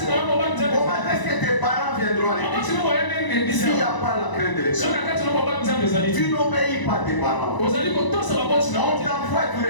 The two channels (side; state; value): right; late; 1.0 ms